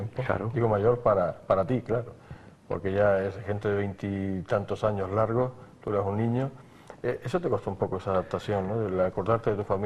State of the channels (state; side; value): identical; both; correlation 1.00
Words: Claro. Digo mayor para ti, claro, porque ya es gente de 20 y tantos años largos, tú eras un niño. Eso te costó un poco esa adaptación, ¿no? El acordarte de tu